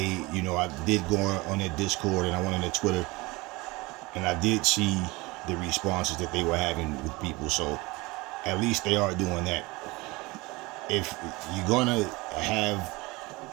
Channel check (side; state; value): left; quieter; 23.3 dB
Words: did go on their Discord and I went on their Twitter, and I did see the responses that they were having with people. So at least they are doing that. If you're gonna have